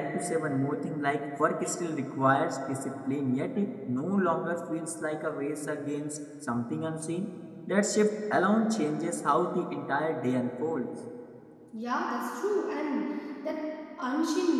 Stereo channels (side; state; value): both; identical; correlation 1.00